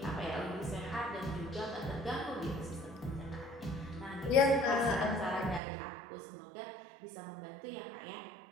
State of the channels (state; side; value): drops out; left; at 5.6 s